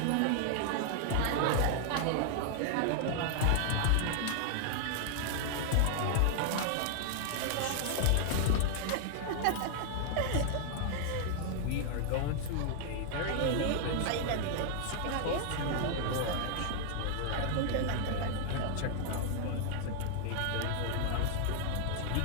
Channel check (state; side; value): different; both; correlation 0.00